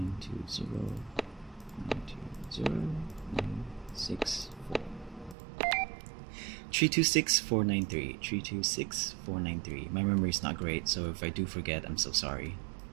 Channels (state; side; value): drops out; left; at 5.4 s